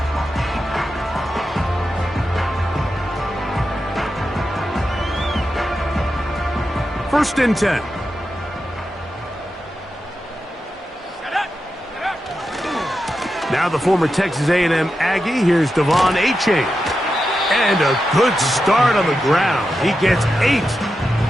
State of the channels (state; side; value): normal; both; correlation 0.89